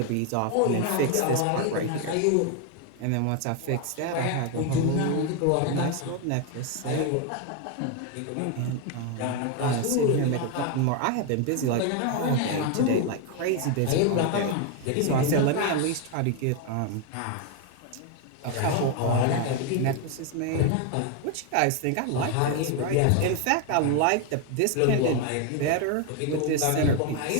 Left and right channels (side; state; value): both; different; correlation 0.01